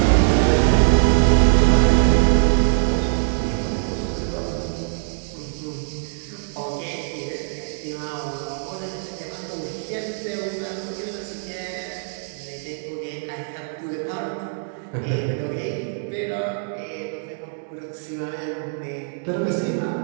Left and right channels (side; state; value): left; silent; digital silence